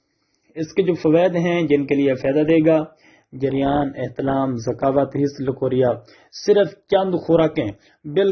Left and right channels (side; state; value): both; identical; correlation 1.00